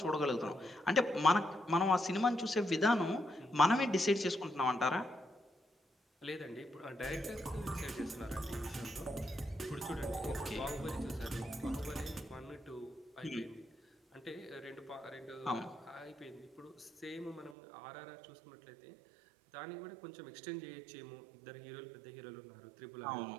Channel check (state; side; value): drops out; left; at 17.6 s